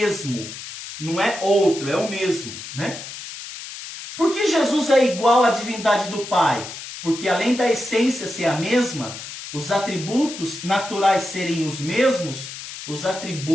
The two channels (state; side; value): noise; left; hiss, 11 dB below the sound